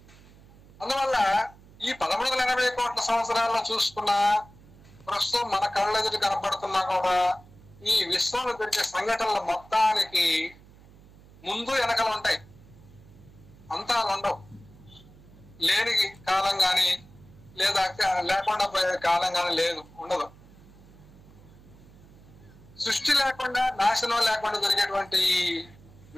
అందువల్ల ఈ 1380 కోట్ల సంవత్సరాల్లో చూసుకున్న ప్రస్తుతం మన కళ్ళెదుటి కనపడుతున్నా కూడా ఈ విశ్వంలో జరిగే సంఘటనల మొత్తానికి ముందు వెనకలు ఉంటాయి, అంతాలు ఉండవు. లేని కాలం కానీ లేదా లేకుండా పోయే కాలం కానీ ఉండదు. సృష్టి లేకుండా, నాశనం లేకుండా జరిగేటువంటి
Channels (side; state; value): right; noise; hum, 23 dB below the sound